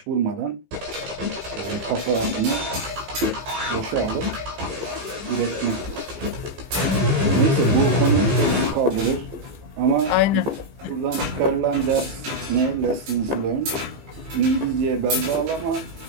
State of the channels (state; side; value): late; left; 15 ms